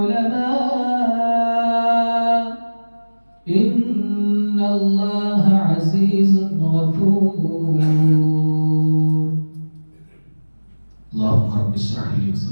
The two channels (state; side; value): inverted; both; correlation -1.00